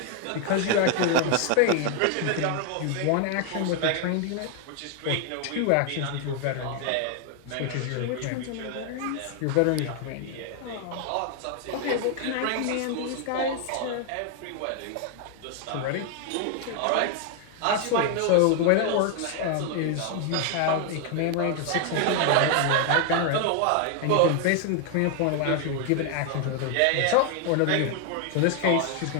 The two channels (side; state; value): both; different; correlation 0.00